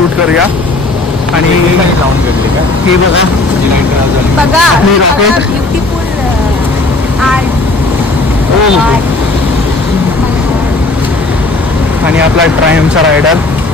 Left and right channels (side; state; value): right; quieter; 3.0 dB